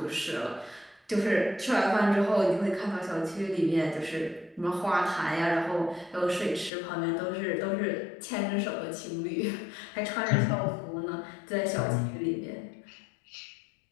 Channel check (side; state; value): right; drops out; at 6.7 s